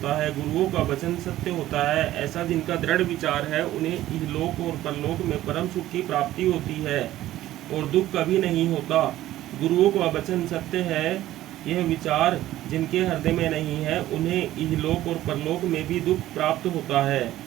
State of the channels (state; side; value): quieter; left; 14.4 dB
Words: है, गुरुओं का वचन सत्य होता है। ऐसा जिनका दृढ़ विचार है, उन्हें इहलोक और परलोक में परम सुख की प्राप्ति होती है और दुख कभी नहीं होता। गुरुओं का वचन सत्य है, यह विचार जिनके हृदय में नहीं है, उन्हें इहलोक और परलोक में भी दुख प्राप्त होता है,